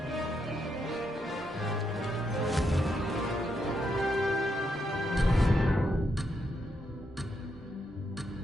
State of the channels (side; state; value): both; normal; correlation 0.80